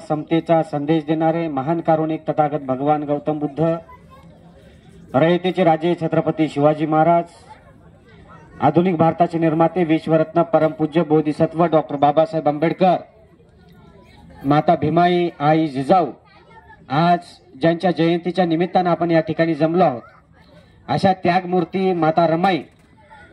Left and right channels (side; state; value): both; identical; correlation 1.00